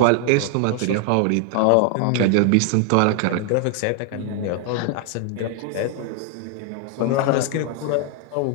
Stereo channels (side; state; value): both; different; correlation 0.00